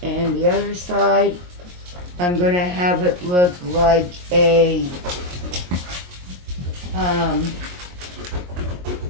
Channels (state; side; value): late; left; 22 ms